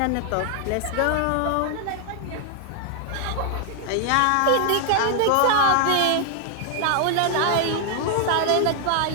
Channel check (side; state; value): both; different; correlation 0.00